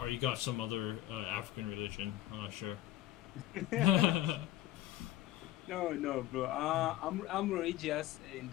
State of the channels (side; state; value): right; quieter; 14.6 dB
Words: you got some other African religion? I'm not sure. No, bro. I'm religious, and